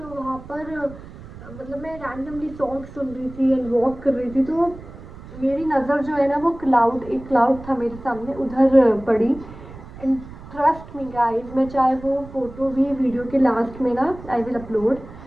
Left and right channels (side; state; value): right; noise; rumble, 16 dB below the sound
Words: वहाँ पर मतलब मैं रैंडमली सॉन्ग सुन रही थी एंड वॉक कर रही थी। तो मेरी नज़र जो है ना, वो एक क्लाउड था मेरे सामने, उधर पड़ी। एंड ट्रस्ट मी गाइस, मैं चाहे वो फ़ोटो भी वीडियो के लास्ट में ना I will upload,